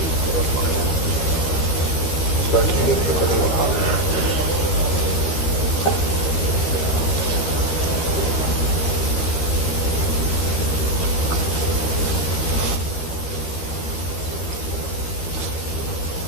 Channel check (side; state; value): right; late; 13 ms